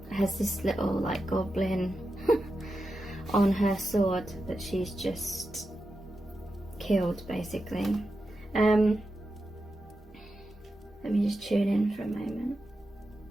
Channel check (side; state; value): both; normal; correlation 0.90